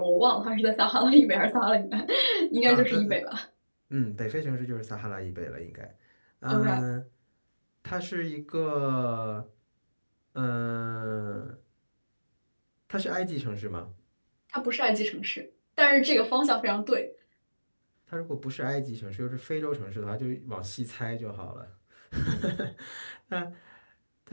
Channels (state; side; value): inverted; both; correlation -1.00